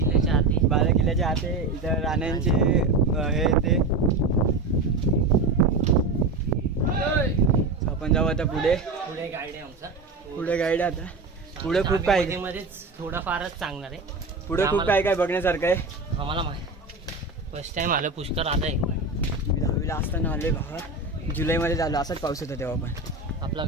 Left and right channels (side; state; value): left; quieter; 3.4 dB